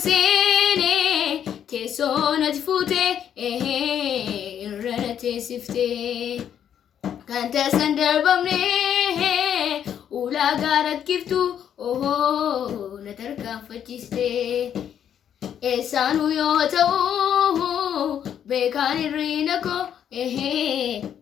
seene teessoo natti fuute irra na teessifte kan taasisan darbamne ulaagaa rakkiftu na tarkaanfachiiste eessaanuu yoo ta'u beekaan hirriina koo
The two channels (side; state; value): right; quieter; 9.3 dB